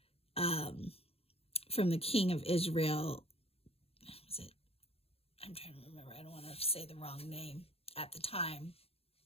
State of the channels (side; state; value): right; late; 0.29 ms